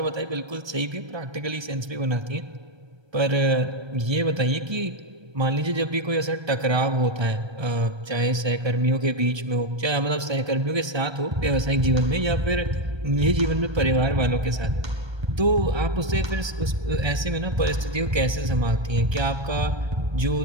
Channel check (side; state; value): left; late; 1.3 ms